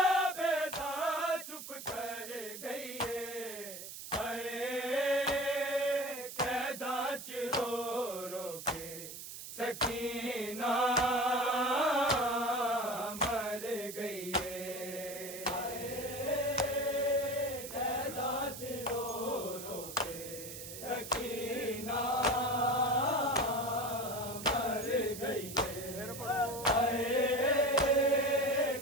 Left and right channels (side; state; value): right; noise; hiss, 10 dB below the sound